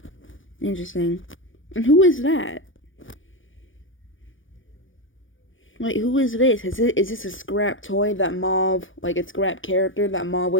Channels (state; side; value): late; right; 0.57 ms